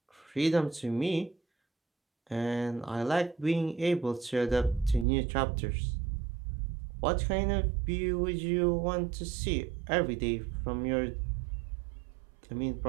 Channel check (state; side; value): drops out; left; at 5.1 s